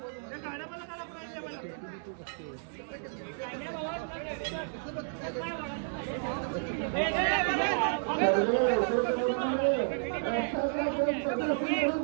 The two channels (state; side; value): silent; left; digital silence